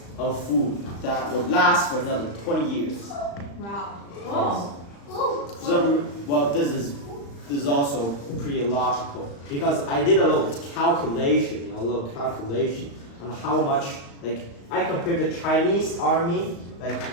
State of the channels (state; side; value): late; right; 35 ms